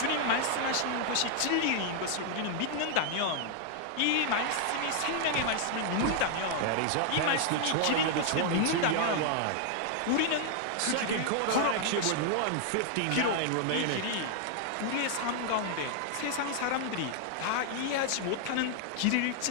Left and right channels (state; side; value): different; both; correlation 0.00